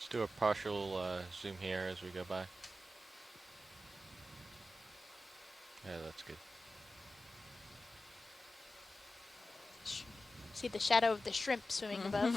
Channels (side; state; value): both; normal; correlation 0.93